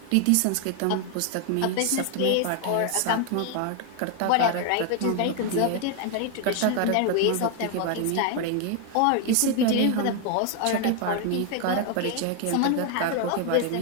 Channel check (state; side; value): different; both; correlation 0.01